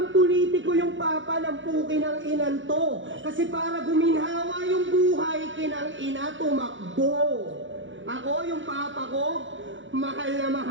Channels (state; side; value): late; left; 0.56 ms